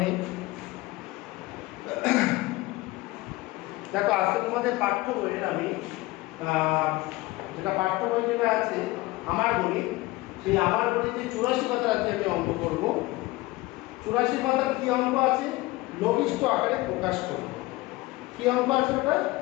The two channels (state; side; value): quieter; right; 20.2 dB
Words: দেখো আজকে তোমাদের পাঠ্য বইয়ের আমি যেটা পাঠ্য বই যেটা আছে আমার গণিত, সেই আমার গণিতে 84 পাতার আজকে আমি অঙ্ক করব। 84 পাতার কি অঙ্ক আছে? লঘিষ্ঠ আকারে প্রকাশ করব। কি অঙ্ক আছে ওটা?